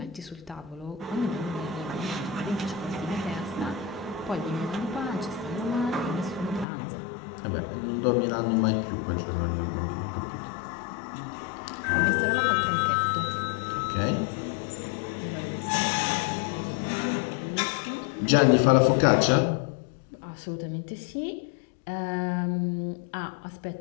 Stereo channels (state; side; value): drops out; right; at 6.7 s